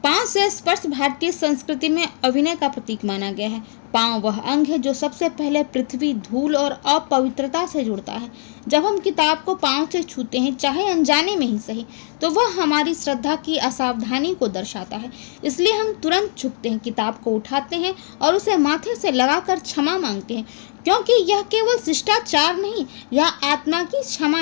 पाँव से स्पर्श भारतीय संस्कृति में अभिनय का प्रतीक माना गया है। पाँव वह अंग है जो सबसे पहले पृथ्वी, धूल और अपवित्रता से जुड़ता है। जब हम किताब को पाँव से छूते हैं, चाहे अनजाने में ही सही, तो वह हमारी श्रद्धा की असावधानी को दर्शाता है। इसलिए हम तुरंत झुकते हैं, किताब को उठाते हैं और उसे माथे से लगाकर क्षमा मांगते हैं, क्योंकि यह केवल शिष्टाचार नहीं, यह आत्मा की क्षमा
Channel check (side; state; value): right; silent; digital silence